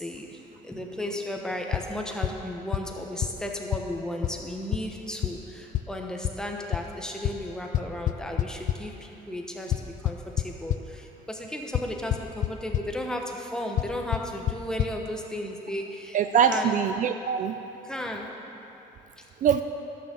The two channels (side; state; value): both; normal; correlation 0.37